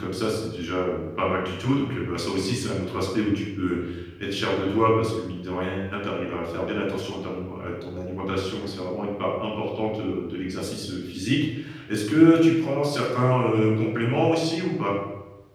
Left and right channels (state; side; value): identical; both; correlation 1.00